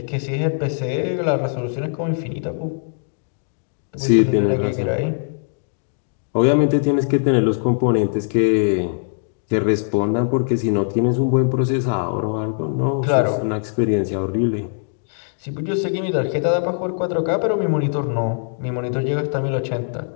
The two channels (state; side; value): silent; right; 65 dB below the other